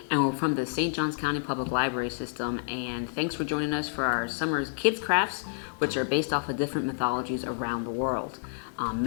And we're from the St. Johns County Public Library System. And thanks for joining us for our summer's kids crafts, which are based off of different mythologies around the world.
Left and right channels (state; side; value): silent; right; digital silence